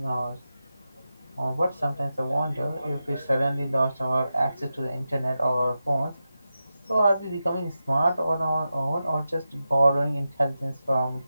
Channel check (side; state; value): both; inverted; correlation -0.91